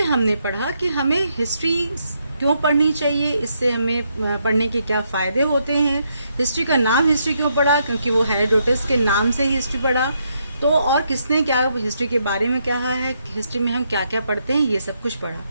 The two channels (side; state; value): both; inverted; correlation -0.77